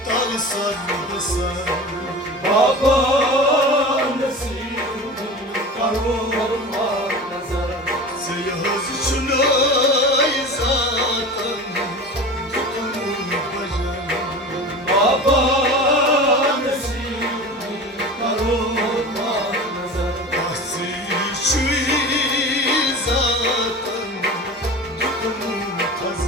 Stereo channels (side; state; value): both; normal; correlation 0.33